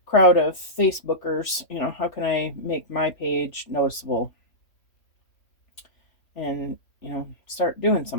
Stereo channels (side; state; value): right; late; 3.1 ms